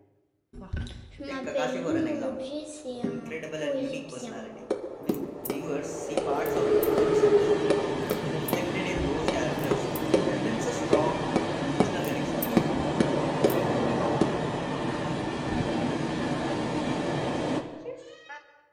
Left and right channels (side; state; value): both; identical; correlation 1.00